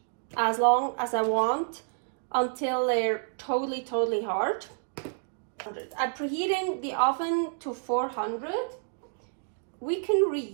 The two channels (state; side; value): silent; left; digital silence